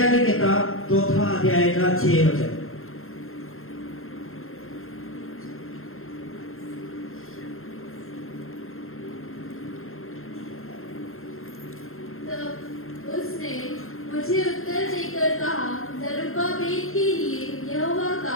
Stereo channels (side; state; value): right; late; 0.61 ms